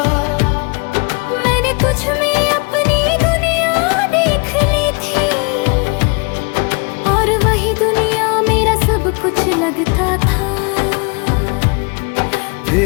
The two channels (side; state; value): right; quieter; 32.3 dB